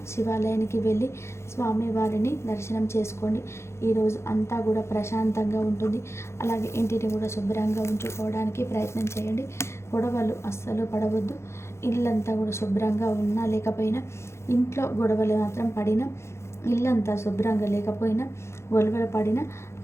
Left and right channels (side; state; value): right; late; 0.13 ms